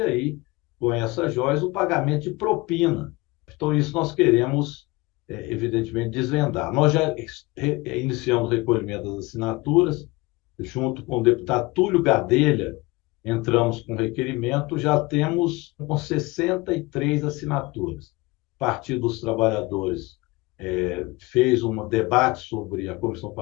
aí, com essas joias, o pagamento de propina. Então, isso nós queremos, evidentemente, desvendar. Nós já iniciamos o recolhimento das assinaturas, junto com o deputado Túlio Gadelha, entramos com requerimento, já temos com 63 assinaturas. Partido dos Trabalhadores fez um debate sobre a Comissão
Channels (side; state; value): right; quieter; 22.9 dB